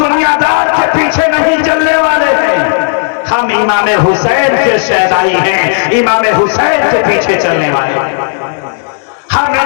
के पीछे नहीं चलने वाले हैं, हम इमाम हुसैन के शहदाई हैं, इमाम हुसैन के पीछे चलने वाले हैं, हम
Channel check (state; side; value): silent; right; digital silence